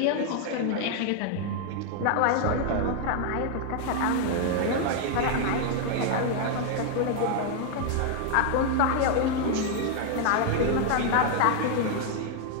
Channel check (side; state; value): both; different; correlation 0.00